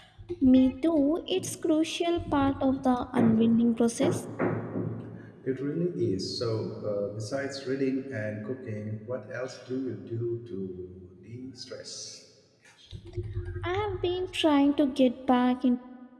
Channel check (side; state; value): both; identical; correlation 1.00